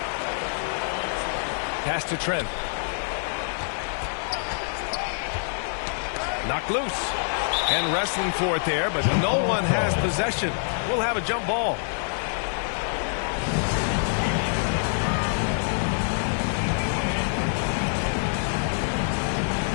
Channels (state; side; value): silent; right; digital silence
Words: Pass to Trent. Knocked loose. And wrestling for it there, but no one has possession. We'll have a jump ball.